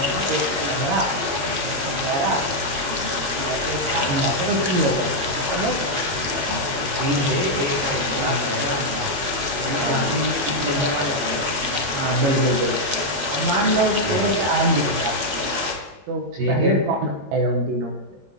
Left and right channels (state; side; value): late; left; 21 ms